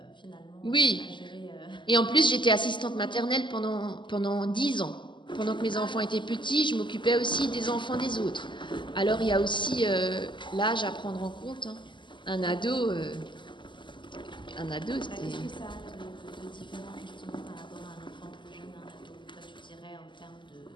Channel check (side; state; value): right; late; 0.23 ms